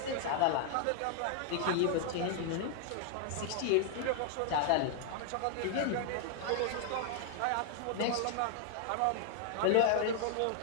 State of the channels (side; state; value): both; different; correlation 0.00